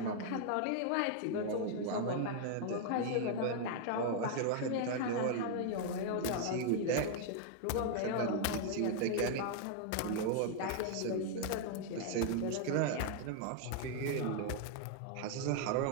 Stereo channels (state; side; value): different; both; correlation 0.00